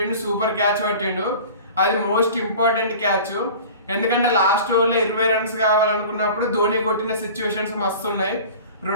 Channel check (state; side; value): inverted; both; correlation -0.40